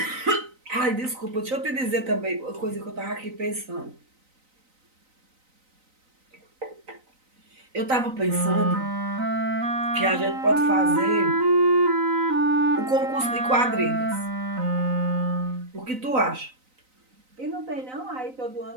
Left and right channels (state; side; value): late; left; 3.9 ms